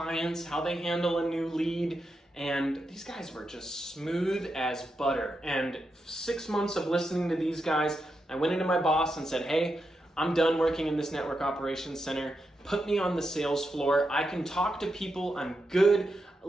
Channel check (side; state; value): both; normal; correlation 0.86